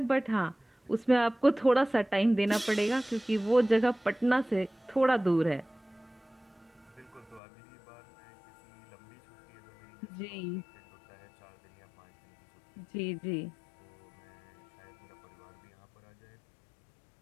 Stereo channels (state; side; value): drops out; right; at 7.4 s